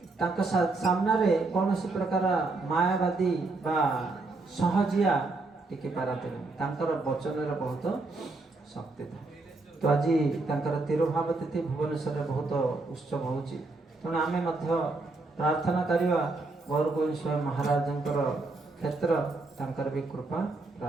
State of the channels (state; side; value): quieter; left; 3.4 dB